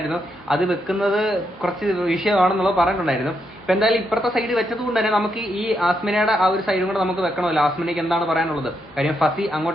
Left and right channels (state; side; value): noise; right; hum, 29 dB below the sound